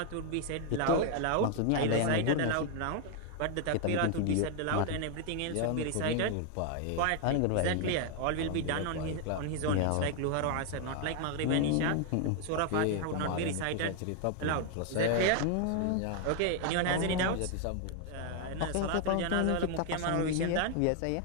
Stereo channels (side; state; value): both; different; correlation 0.00